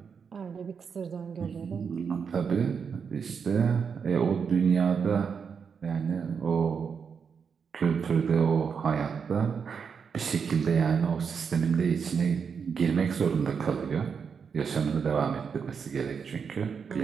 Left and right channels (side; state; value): left; quieter; 6.3 dB